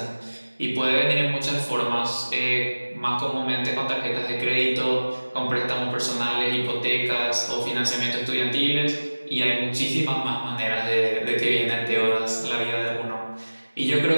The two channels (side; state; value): both; inverted; correlation -1.00